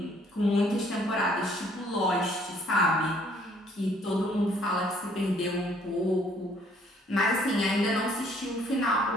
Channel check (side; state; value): both; normal; correlation 0.62